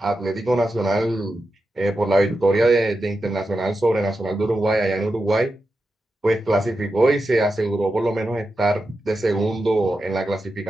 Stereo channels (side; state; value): both; normal; correlation 0.89